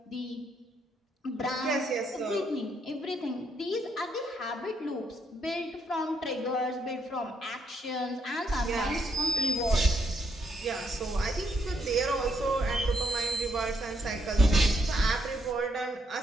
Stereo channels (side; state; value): both; normal; correlation 0.75